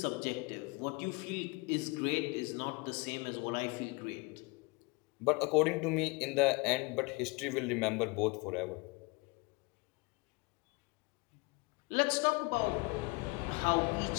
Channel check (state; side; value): quieter; right; 26.8 dB